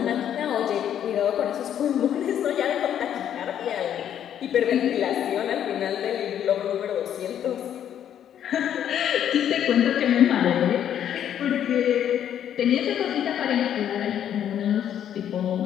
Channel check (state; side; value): quieter; right; 9.9 dB